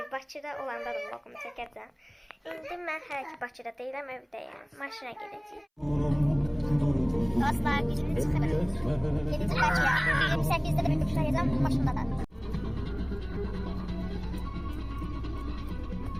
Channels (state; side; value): identical; both; correlation 1.00